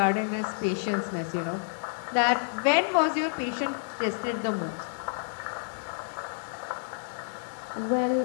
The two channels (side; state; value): right; silent; digital silence